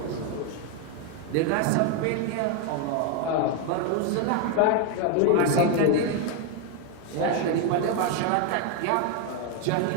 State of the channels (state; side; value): different; both; correlation 0.01